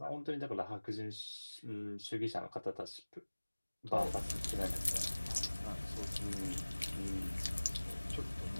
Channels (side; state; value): both; inverted; correlation -1.00